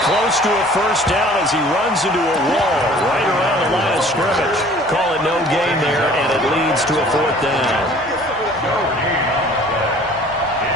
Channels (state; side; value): normal; both; correlation 0.51